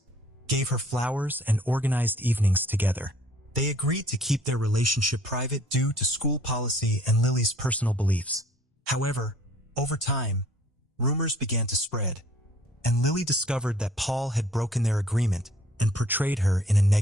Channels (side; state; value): both; normal; correlation 0.56